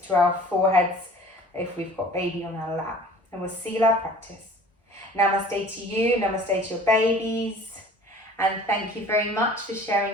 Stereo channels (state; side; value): normal; both; correlation 0.47